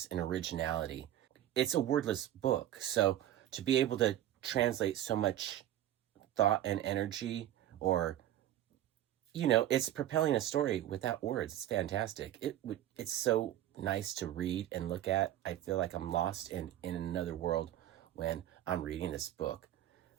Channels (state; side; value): quieter; left; 12.5 dB